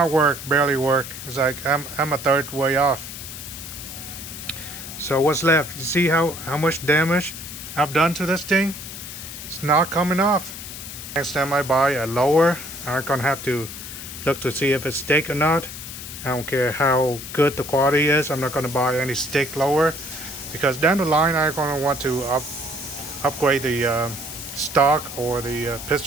work, barely work. It's like I'm a third way off. So what's left? You see how much damage I've done to this thing? It's not coming off. Next time I buy a lower, I'm gonna have to look to see if it's stick or not. I don't care how good the quality is. I'm not gonna buy any stick lower because down the line I'm gonna want to upgrade the stock or the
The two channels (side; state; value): left; noise; hiss, 10 dB below the sound